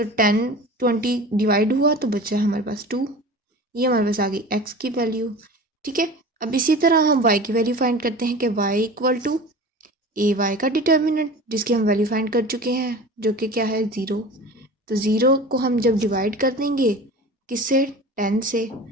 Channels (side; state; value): both; normal; correlation 0.37